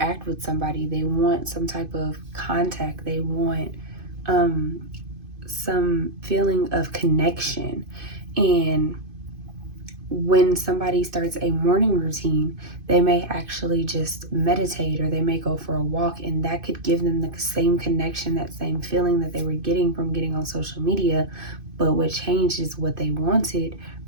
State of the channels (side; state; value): left; late; 2.5 ms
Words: with somebody. They want some type of contact. They want some feeling of connection. And when somebody starts a morning routine, they may actually just meditate, or they may go for a walk, and that could give them the same connection, that same feeling that they were getting from getting on social media. But what changed is what they wanted